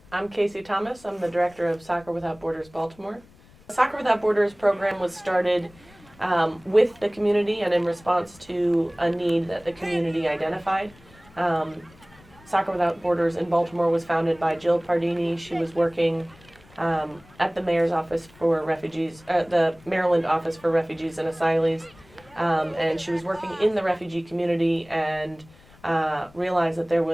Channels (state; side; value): noise; left; rumble, 26 dB below the sound